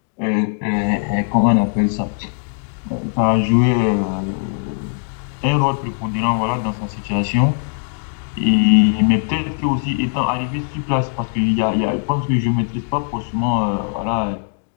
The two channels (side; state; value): right; silent; digital silence